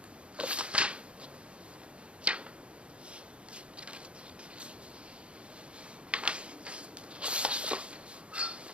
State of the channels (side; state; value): left; late; 0.058 ms